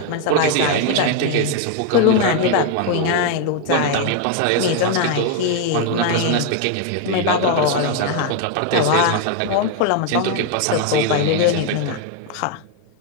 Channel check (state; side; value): different; both; correlation 0.01